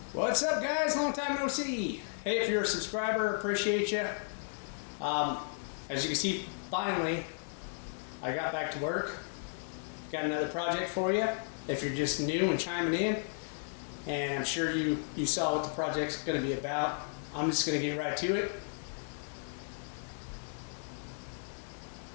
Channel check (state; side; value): silent; right; digital silence